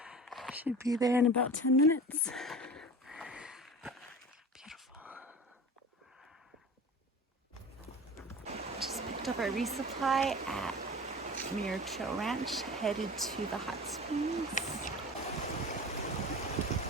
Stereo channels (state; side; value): normal; both; correlation 0.36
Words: Should be there in about 10 minutes. Beautiful. Just picked up our resupply at Muir Trail Ranch, headed to the hot springs.